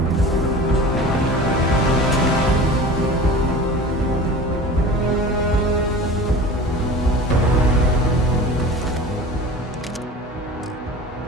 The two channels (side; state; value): both; normal; correlation 0.37